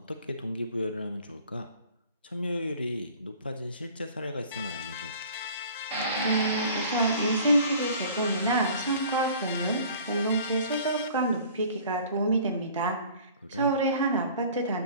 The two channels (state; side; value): inverted; both; correlation -0.48